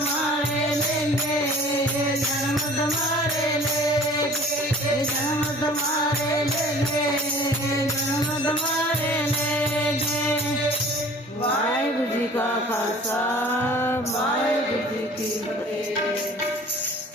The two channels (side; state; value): both; normal; correlation 0.48